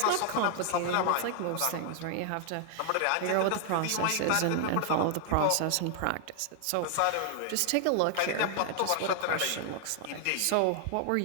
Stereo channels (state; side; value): different; both; correlation 0.00